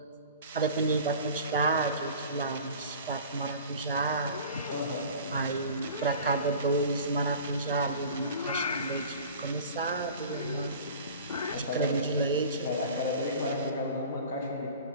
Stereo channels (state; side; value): inverted; both; correlation -0.42